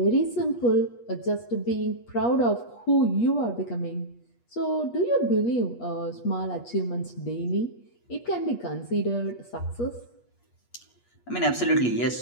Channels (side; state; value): right; late; 8.4 ms